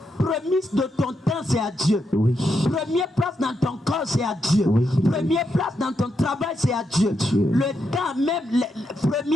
Premier de ton temps, c'est à Dieu. Oui. Première place dans ton corps, c'est à Dieu. Oui. Première place dans ton travail, c'est à Dieu. Dieu. Le temps, même le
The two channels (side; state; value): both; normal; correlation 0.82